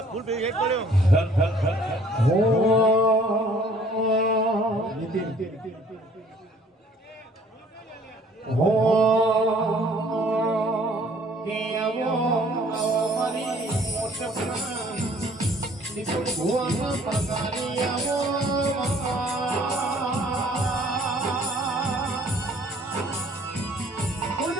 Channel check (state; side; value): normal; both; correlation 0.57